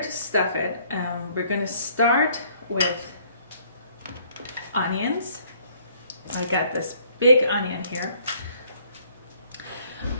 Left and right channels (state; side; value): inverted; both; correlation -0.62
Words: stuff it, we're going to start with onions. I got this big onion here.